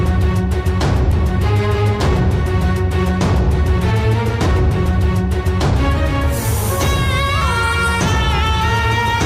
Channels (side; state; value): both; identical; correlation 1.00